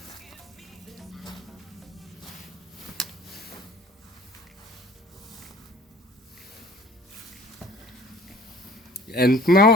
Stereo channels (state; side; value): normal; both; correlation 0.49